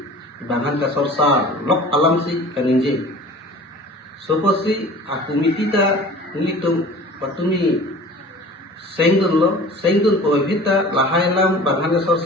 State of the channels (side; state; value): both; normal; correlation 0.43